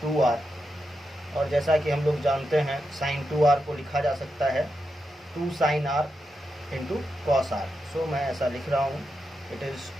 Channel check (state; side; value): normal; both; correlation 0.86